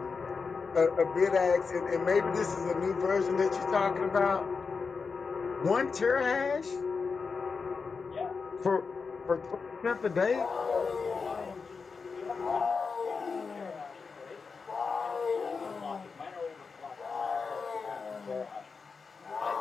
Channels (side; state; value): right; quieter; 5.0 dB